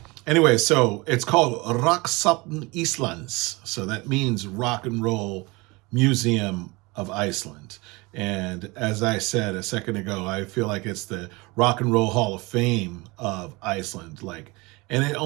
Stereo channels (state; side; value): quieter; left; 24.5 dB